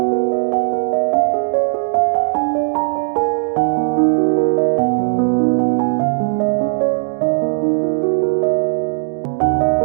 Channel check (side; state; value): left; silent; digital silence